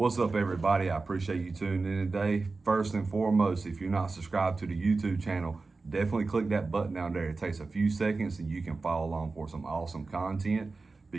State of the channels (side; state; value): left; quieter; 3.8 dB